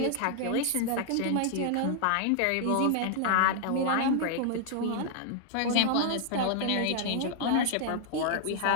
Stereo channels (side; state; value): both; different; correlation -0.01